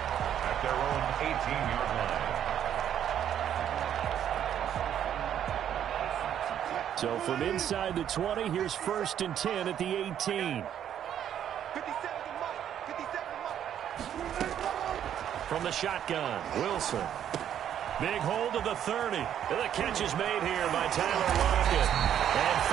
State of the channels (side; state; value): left; quieter; 9.9 dB